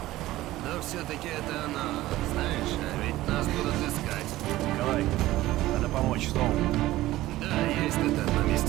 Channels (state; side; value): quieter; left; 16.4 dB